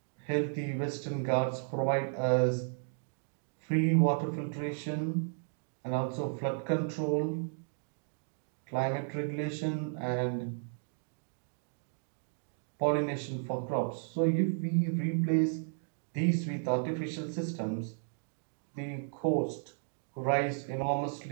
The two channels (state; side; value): silent; left; digital silence